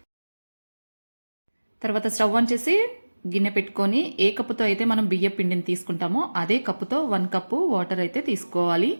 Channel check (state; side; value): inverted; both; correlation -1.00